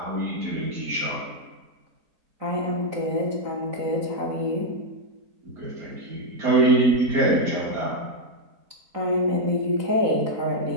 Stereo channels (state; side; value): late; left; 4.0 ms